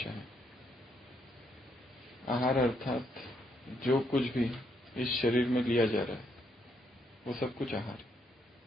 है। आहार अर्थात जो कुछ भी इस शरीर में लिया जा रहा है वो सब कुछ आहार है।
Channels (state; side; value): normal; both; correlation 0.74